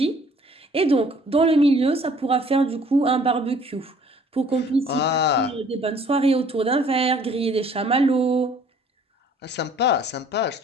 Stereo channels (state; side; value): normal; both; correlation 0.56